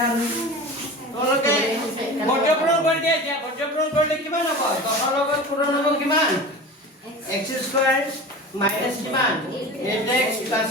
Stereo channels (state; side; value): normal; both; correlation 0.33